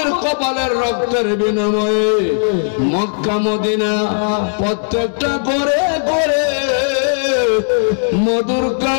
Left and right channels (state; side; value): silent; right; digital silence